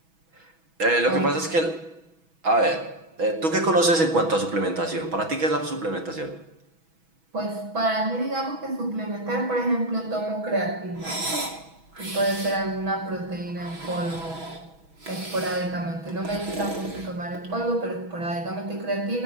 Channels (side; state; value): left; late; 6.1 ms